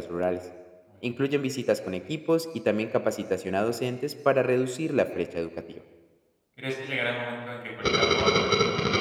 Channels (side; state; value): both; identical; correlation 1.00